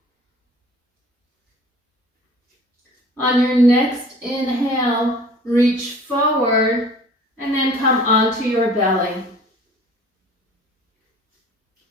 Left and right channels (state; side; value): normal; both; correlation 0.48